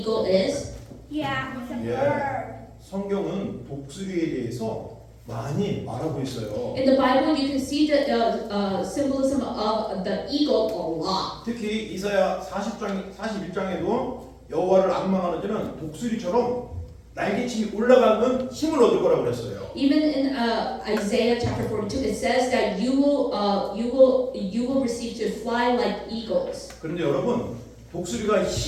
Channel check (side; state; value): both; identical; correlation 1.00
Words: is? Yeah, it's a Yeah. bird. 성경은 독수리에 대해서 많이 말하고 있어요. In the Bible, you can see the symbolism of the eagle a lot. 특히 이사야 41장에도 여호와를 악망하는 자는 독수리처럼 날개침이 올라가는 힘을 얻을 거라고 그랬어요. Even in Isaiah chapter 42, it says that you will receive to fly like eagles. 그런데 여러분 독수리가